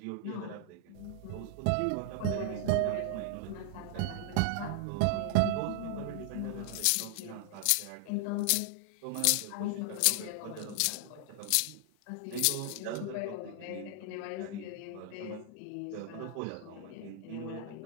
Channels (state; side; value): different; both; correlation -0.01